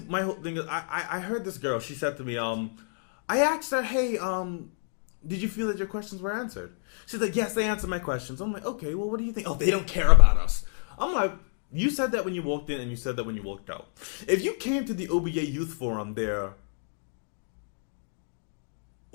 whole thing is, I heard this girl. She said to me, I asked her, hey, did you feel that your questions were answered? She's like, yes, they answered my questions. I'm like, okay, well, what do you think? Oh, they don't care about us. I'm like, you said that when you walked in and you said that when you walked out. If you came to the OBA Youth Forum there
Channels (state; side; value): silent; right; 59 dB below the other